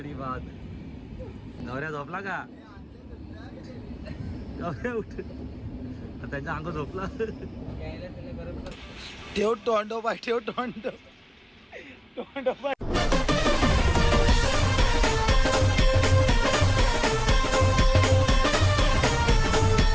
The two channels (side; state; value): both; identical; correlation 1.00